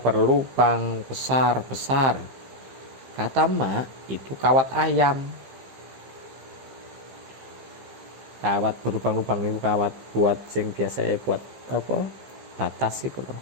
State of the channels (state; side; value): late; left; 15 ms